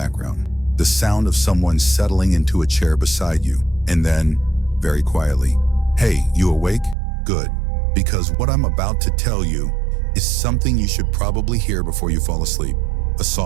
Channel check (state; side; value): drops out; left; at 7.0 s